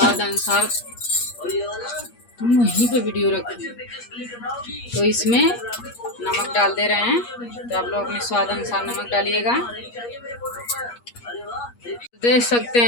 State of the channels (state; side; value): late; right; 8.4 ms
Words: अनुसार, तुम वहीं पे वीडियो रखो, तो इसमें नमक डाल दे रहे हैं। तो आप लोग अपने स्वाद अनुसार नमक डालिएगा। देख सकते